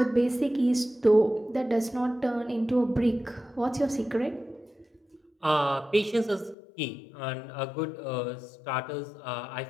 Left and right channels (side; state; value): right; drops out; at 6.6 s